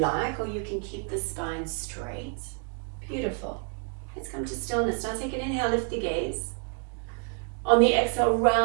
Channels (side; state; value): left; quieter; 38.0 dB